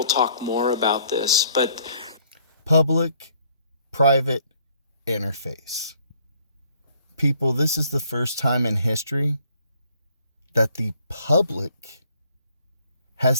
talk more about this, but... Public-private interface. People, this is the first time in history that the public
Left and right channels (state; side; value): inverted; both; correlation -0.63